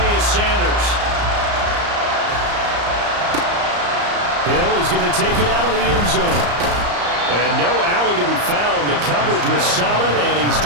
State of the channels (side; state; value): left; late; 34 ms